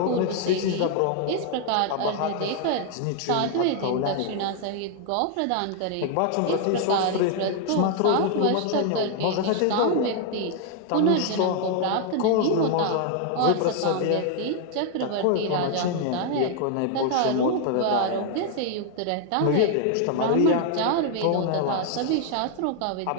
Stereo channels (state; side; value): different; both; correlation 0.00